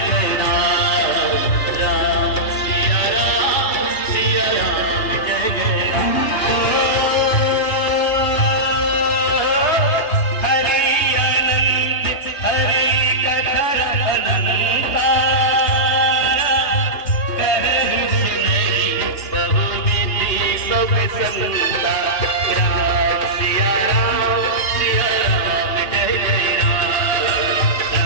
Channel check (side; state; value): right; late; 2.8 ms